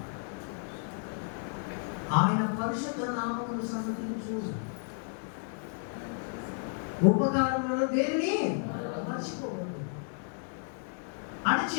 ఆయన పరిశుద్ధ నామమును సన్నతించు. ఉపకారములను దేనిని మర్చిపోవద్దు అని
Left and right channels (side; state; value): right; silent; 56 dB below the other